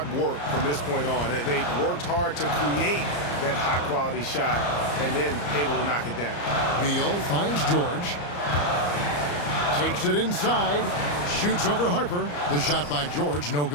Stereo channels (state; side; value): late; right; 34 ms